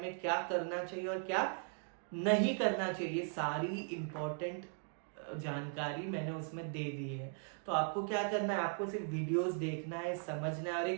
क्या करना चाहिए और क्या नहीं करना चाहिए। सारी इंपॉर्टेंट जानकारी मैंने उसमें दे दी है। तो आपको क्या करना है? आपको सिर्फ वीडियोस देखना है, समझना है और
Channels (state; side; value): silent; left; 52 dB below the other